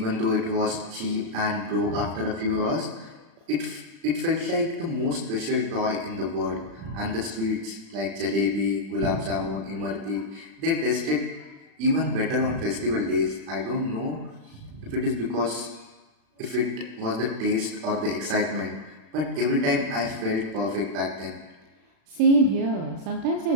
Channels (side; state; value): left; late; 35 ms